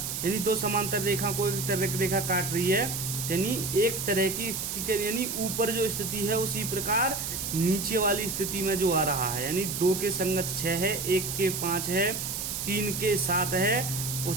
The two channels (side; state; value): right; noise; hiss, 4 dB below the sound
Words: यानी दो समांतर रेखा को एक तिर्यक रेखा काट रही है, यानी एक तरह की स्थिति के, यानी ऊपर जो स्थिति है उसी प्रकार नीचे वाली स्थिति में जो आ रहा है। यानी 2 के संगत 6 है, 1 के 5 है, 3 के 7 है